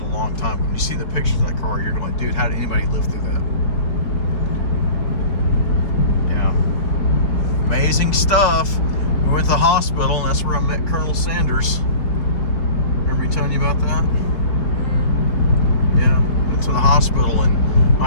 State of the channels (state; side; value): late; right; 4.7 ms